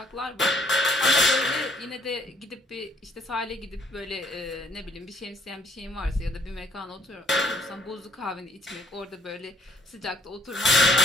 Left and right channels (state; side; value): normal; both; correlation 0.64